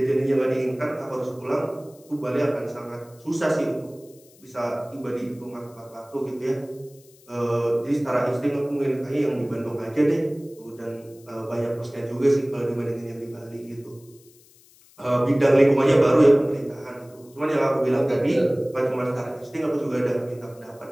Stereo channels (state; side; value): noise; left; hiss, 27 dB below the sound